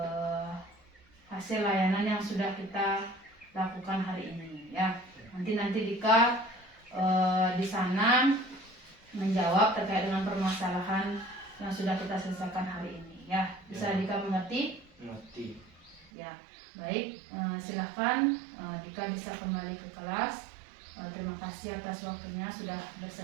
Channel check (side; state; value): left; drops out; at 16.1 s